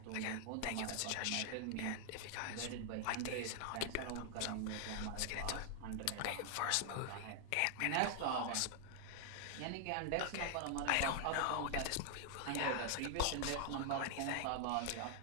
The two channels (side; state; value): both; different; correlation 0.00